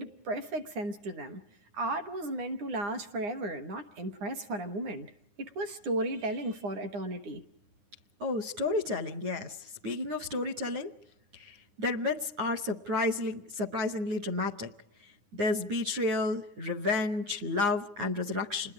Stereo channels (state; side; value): late; left; 9.7 ms